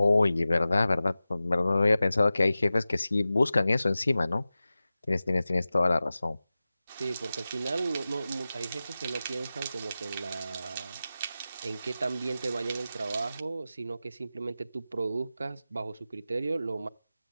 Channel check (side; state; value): both; inverted; correlation -0.95